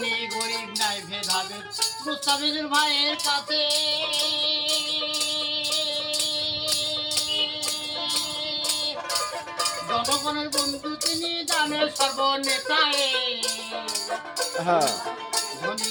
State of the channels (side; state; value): both; identical; correlation 1.00